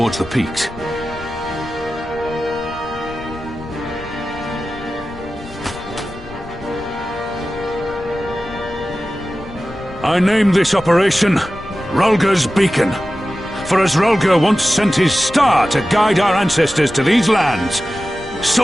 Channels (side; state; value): left; noise; rumble, 17 dB below the sound